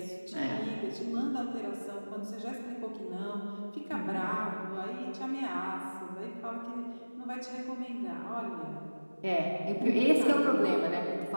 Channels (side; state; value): both; inverted; correlation -1.00